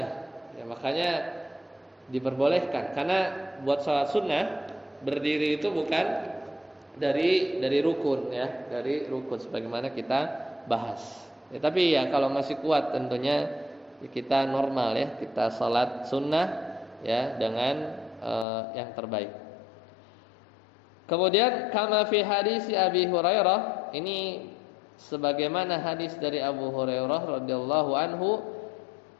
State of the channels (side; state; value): right; drops out; at 18.4 s